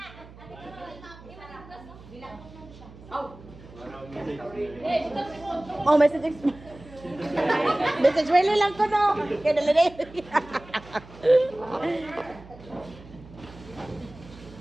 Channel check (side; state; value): right; noise; hum, 19 dB below the sound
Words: Oh, message. Message really lang ko no. Kaya dala na yun.